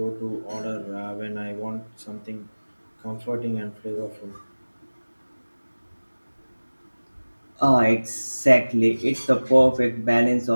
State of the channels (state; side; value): inverted; both; correlation -1.00